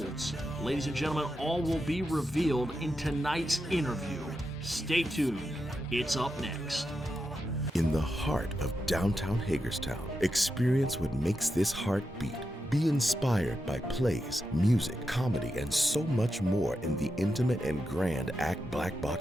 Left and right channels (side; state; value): both; normal; correlation 0.87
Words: Ladies and gentlemen, all will be revealed in tonight's interview. Stay tuned. It's up next. In the heart of downtown Hagerstown, experience what makes this heart beat. Be inspired by plays, music, comedy, and so much more in the intimate and grand ACT Black